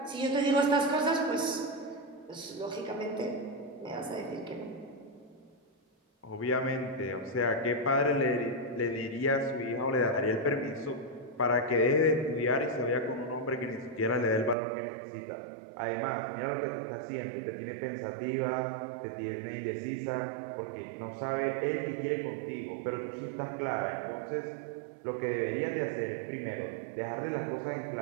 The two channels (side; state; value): left; drops out; at 14.6 s